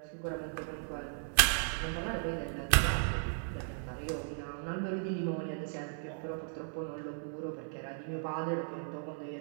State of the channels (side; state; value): left; silent; 54 dB below the other